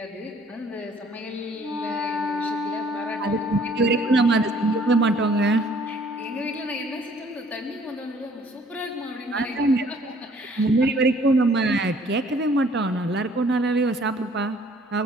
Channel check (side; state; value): both; normal; correlation 0.58